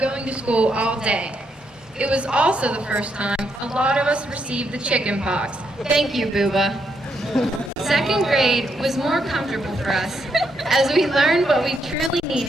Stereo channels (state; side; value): normal; both; correlation 0.78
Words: to school all day. It was also the first time a lot of us received the chicken pox. Thank you, Booba. Second grade was more comfortable for us as we learned what we truly